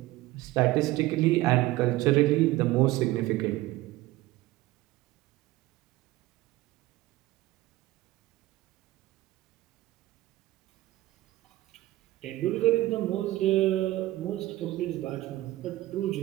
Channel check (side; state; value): left; quieter; 17.1 dB